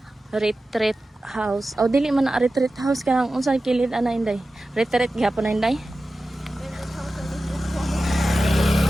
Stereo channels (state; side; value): normal; both; correlation 0.94